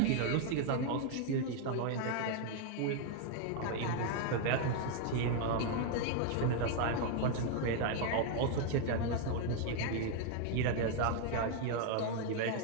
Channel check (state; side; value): different; both; correlation 0.00